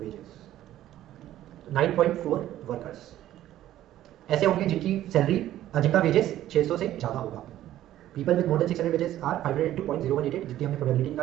9.4 वर्कर्स ऐसे होंगे जिनकी सैलरी जिनका वेजेस 600 से ज़्यादा होगा। People with more than 600 wages are 500 into 0.0188, जितनी हमने प्रोबेबिलिटी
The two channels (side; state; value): left; quieter; 13.2 dB